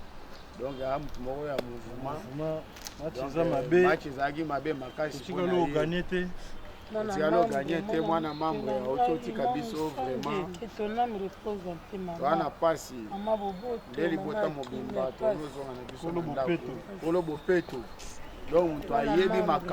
donc ya mutu moko ya mouvement match ezalaki mabe makasi tikalo gagné te mwana membre ya ototika biso vraiment wana pasi nde libota mobimba tozozonga na biso kolo bopeto donc moto ayebi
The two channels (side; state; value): both; identical; correlation 1.00